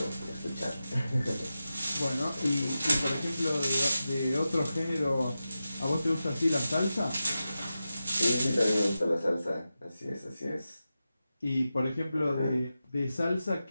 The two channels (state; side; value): inverted; both; correlation -0.92